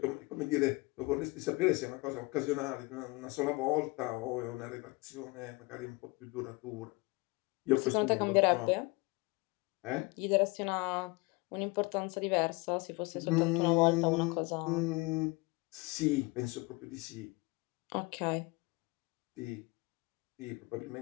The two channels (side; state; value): right; quieter; 25.6 dB